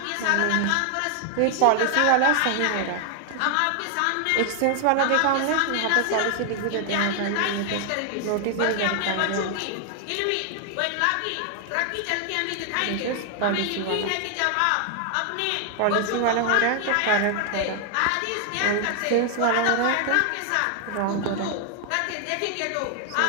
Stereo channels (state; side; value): different; both; correlation 0.00